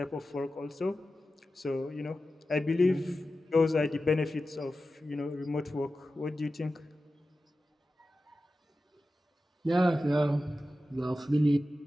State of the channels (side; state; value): both; normal; correlation 0.93